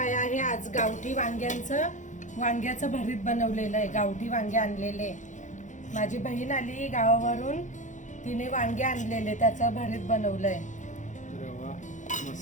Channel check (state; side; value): late; right; 0.36 ms